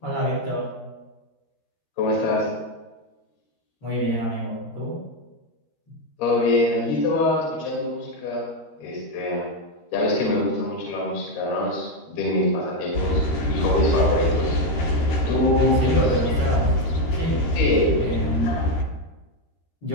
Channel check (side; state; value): right; late; 13 ms